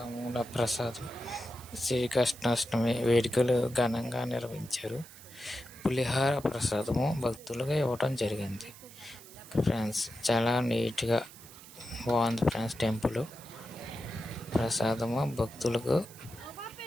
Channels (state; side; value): noise; right; hiss, 19 dB below the sound